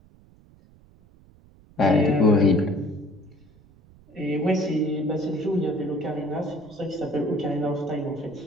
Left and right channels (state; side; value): noise; right; rumble, 27 dB below the sound